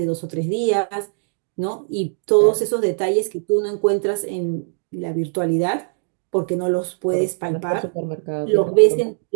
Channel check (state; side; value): silent; left; digital silence